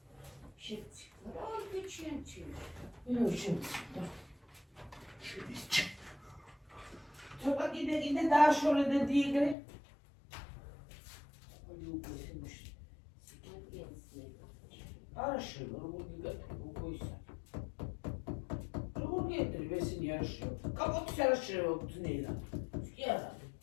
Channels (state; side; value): drops out; right; at 9.6 s